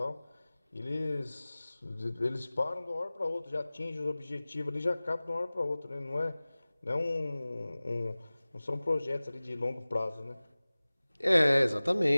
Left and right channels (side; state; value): both; inverted; correlation -0.99